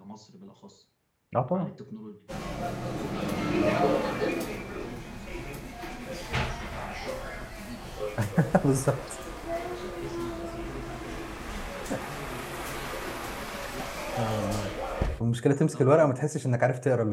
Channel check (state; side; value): identical; both; correlation 1.00